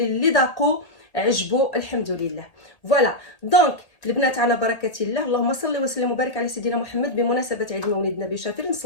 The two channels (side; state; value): right; late; 1.8 ms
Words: اللي ذاقوا عجبوا الحمد لله. فوالا دونك البنات على بركه الله، اللهم صل وسلم وبارك على سيدنا محمد بمناسبه عيد مولد النبي الشريف،